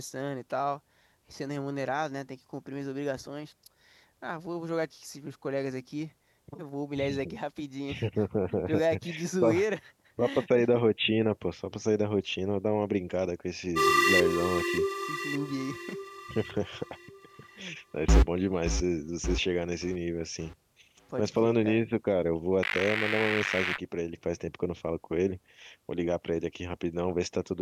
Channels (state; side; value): identical; both; correlation 1.00